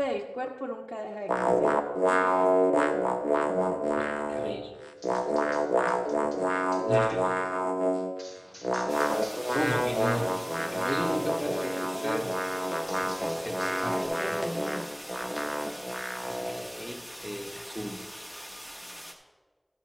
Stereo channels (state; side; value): identical; both; correlation 1.00